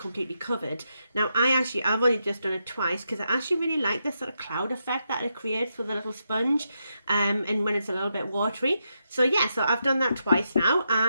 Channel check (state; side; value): inverted; both; correlation -0.83